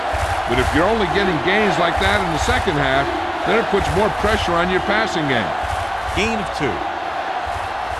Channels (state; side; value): identical; both; correlation 1.00